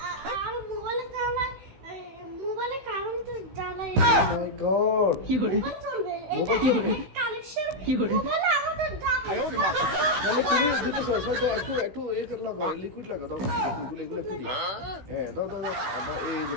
আর মোবাইলে জ্বালায় মোবাইলে কারেন্ট জ্বালায় মাই গড, মোবাইল চলবে এটা কালেকশন মোবাইলে আমাদের দাম তাহলে তুমি দিতেছো সেটা একটু এই করে লাগাও, লিকুইড লাগাও, দাও এগুলো একটু দিই। হ্যাঁ দাও দাও দাও, এই যে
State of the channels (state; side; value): late; left; 16 ms